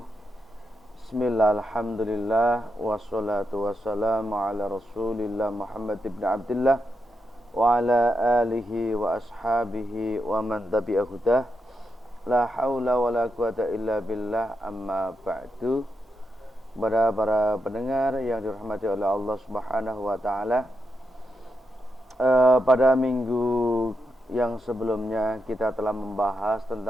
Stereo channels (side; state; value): both; normal; correlation 0.84